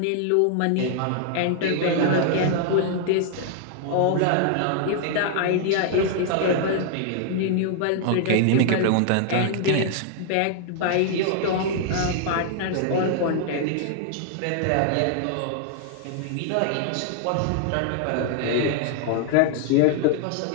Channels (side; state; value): both; different; correlation 0.00